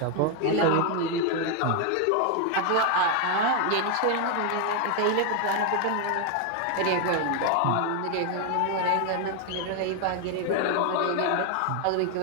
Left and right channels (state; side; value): different; both; correlation 0.01